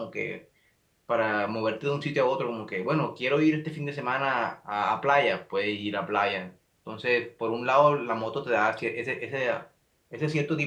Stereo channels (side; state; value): both; identical; correlation 1.00